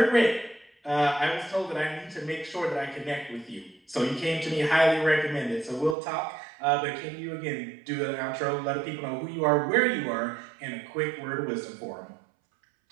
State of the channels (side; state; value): left; drops out; at 6.0 s